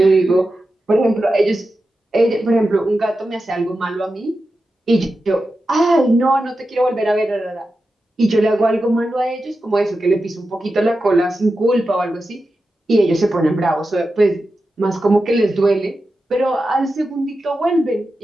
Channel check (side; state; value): both; normal; correlation 0.91